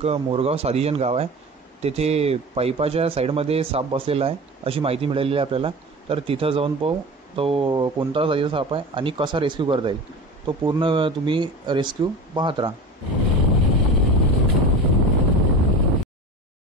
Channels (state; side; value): normal; both; correlation 0.33